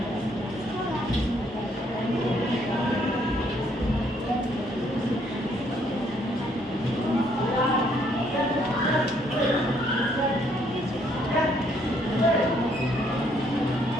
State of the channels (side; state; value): both; normal; correlation 0.68